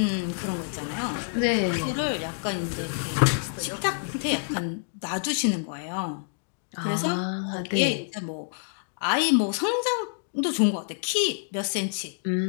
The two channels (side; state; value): right; silent; digital silence